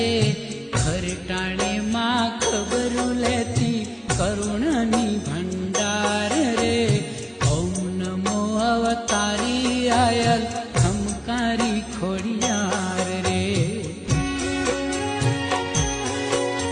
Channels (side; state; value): both; identical; correlation 1.00